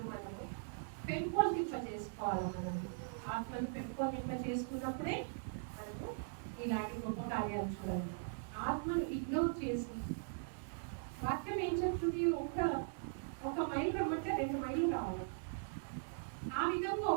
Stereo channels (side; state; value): left; silent; digital silence